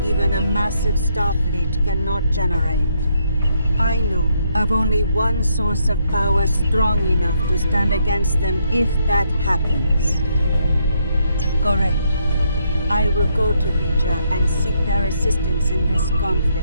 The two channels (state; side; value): inverted; both; correlation -0.74